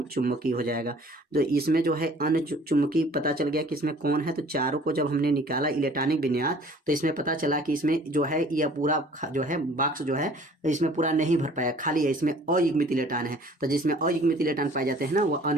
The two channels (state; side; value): normal; both; correlation 0.52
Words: हो जाएगा। तो इसमें जो है अनुचुंबकीय पता चल गया कि इसमें कौन है। तो चारों को जब हमने निकाला इलेक्ट्रॉनिक विन्यास तो इसमें पता चला कि इसमें जो है यह पूरा जो है बॉक्स जो है इसमें पूरा नहीं भर पाया, खाली है, इसमें अयुग्मित इलेक्ट्रॉन है। तो जिसमें अयुग्मित इलेक्ट्रॉन पाए जाते हैं ना वो